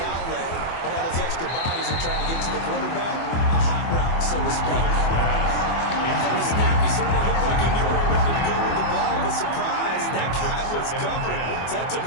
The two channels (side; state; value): right; late; 24 ms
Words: outlet when all those extra bodies are trying to get to the quarterback. A hot route, so to speak. From the snap, he certainly looked like he knew where he wanted to go with the ball, but surprise, that guy was covered. So that took